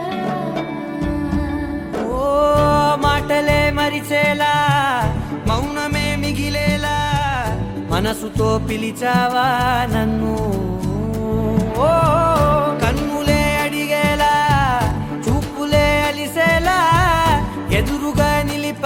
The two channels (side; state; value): both; identical; correlation 1.00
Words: ఓ మాటలే మరిచేలా మౌనమే మిగిలేలా మనసుతో పిలిచావా నన్ను ఓ కన్నులే అడిగేలా చూపులే అలిసేలా ఎదురుగా